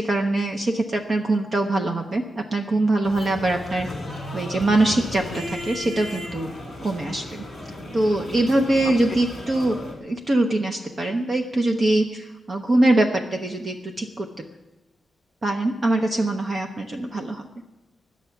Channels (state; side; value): normal; both; correlation 0.91